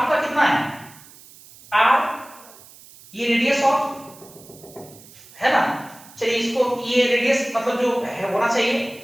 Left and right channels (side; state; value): right; noise; hiss, 22 dB below the sound